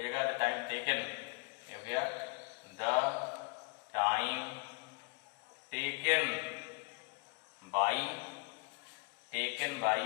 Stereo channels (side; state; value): right; quieter; 31.9 dB